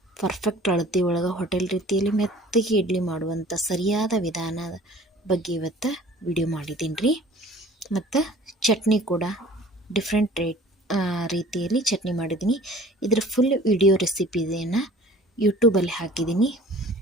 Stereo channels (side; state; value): both; normal; correlation 0.49